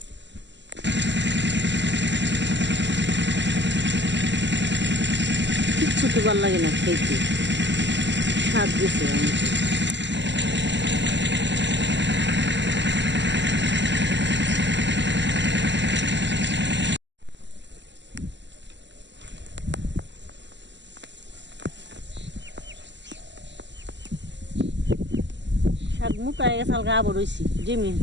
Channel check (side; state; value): left; late; 0.52 ms